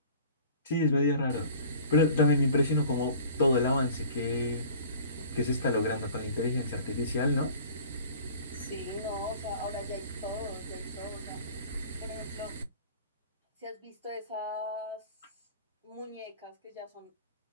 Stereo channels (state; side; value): inverted; both; correlation -0.45